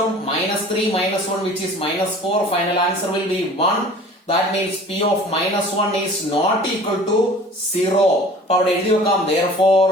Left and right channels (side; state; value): both; normal; correlation 0.46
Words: minus 3 minus 1 which is minus 4. Final answer will be 1. that means p of minus 1 is not equal to 0. അപ്പൊ അവിടെ എഴുതി വെക്കാം therefore